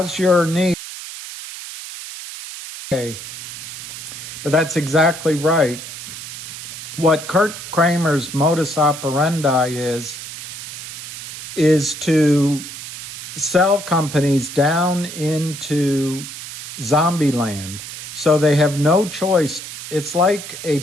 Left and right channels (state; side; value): noise; right; hiss, 10 dB below the sound